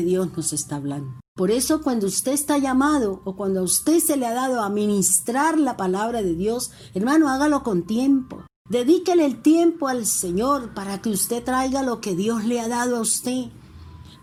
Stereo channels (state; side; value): identical; both; correlation 1.00